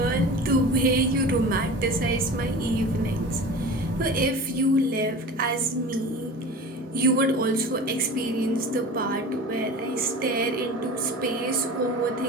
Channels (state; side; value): normal; both; correlation 0.35